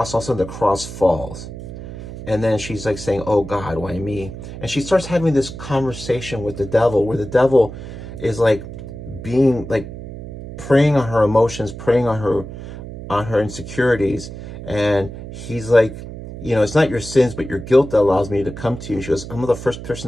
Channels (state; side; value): noise; right; hum, 11 dB below the sound